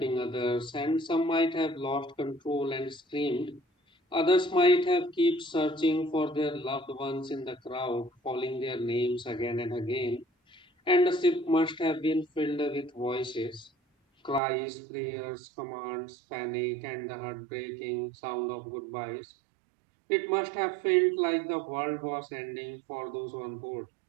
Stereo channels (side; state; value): left; drops out; at 14.4 s